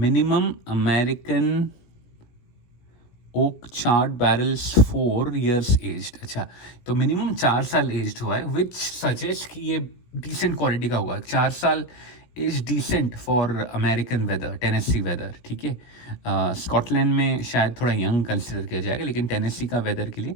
minimum American oak charred barrels 4 years aged. अच्छा, तो मिनिमम 4 साल एज्ड हुआ है, विच सजेस्ट कि ये डिसेंट क्वालिटी का हुआ है. 4 साल is decent for American weather, Tennessee weather, ठीक है। स्कॉटलैंड में शायद थोड़ा यंग कंसिडर किया जाएगा, लेकिन टेनेसी का वेदर के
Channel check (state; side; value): late; right; 17 ms